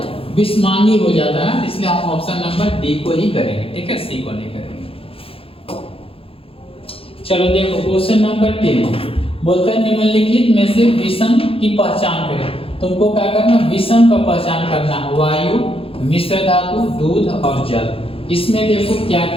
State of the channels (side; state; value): right; late; 0.27 ms